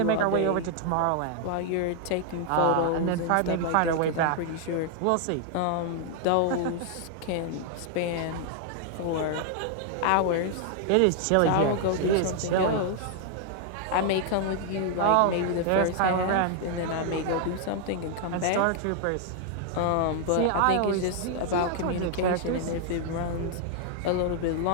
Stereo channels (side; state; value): both; different; correlation 0.00